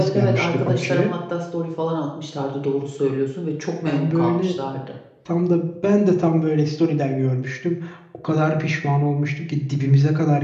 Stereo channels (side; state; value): both; identical; correlation 1.00